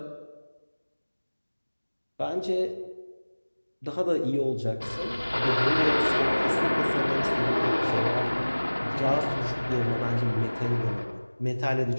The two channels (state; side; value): inverted; both; correlation -1.00